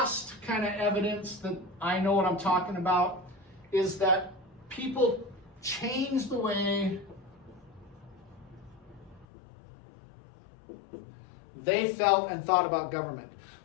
kind of evidence that I know what I'm talking about is that people changed the way they felt and thought about government.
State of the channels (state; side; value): drops out; right; at 9.2 s